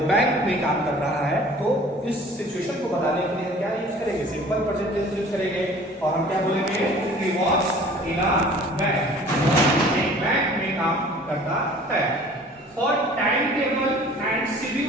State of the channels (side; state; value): both; normal; correlation 0.48